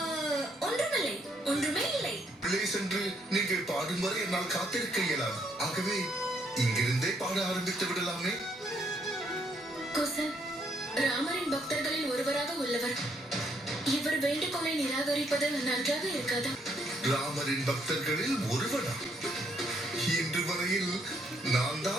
ஒன்றுமில்லை, ஒன்றுமே இல்லை. உள்ளே சென்று நீங்கள் பாடும் வரை என்னால் காத்திருக்க இயலாது. ஆகவே இங்கிருந்தே பாட ஆரம்பித்து விடலாமே. குசன், ராமரின் பக்தர்களில் ஒருவராக உள்ளவர். இவர் வேண்டுகோளை நிராகரிப்பது நன்றாக இருக்காதா? ராமரின் பக்தர்களில் ஒருவனா? இன்று வரையில் நான்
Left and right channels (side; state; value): both; normal; correlation 0.71